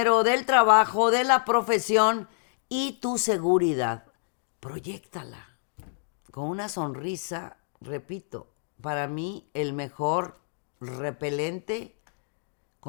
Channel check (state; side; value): silent; right; digital silence